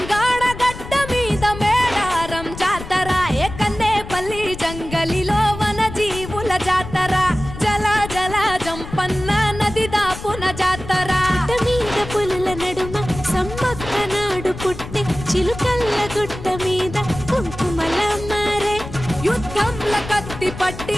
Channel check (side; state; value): left; noise; rumble, 11 dB below the sound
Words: గడ్డ మీద మేడారం జాతర ఏ కన్నేపల్లి జంగలిలో వన జీవుల జాతర జల జల జంపన్న నది దాపున జాతర మీద పులుల నడుమ సమ్మక్క నాడు పుట్టి చిలుకల్ల గుట్ట మీద కుంకుమల మారే యుద్ధంల కత్తి పట్టి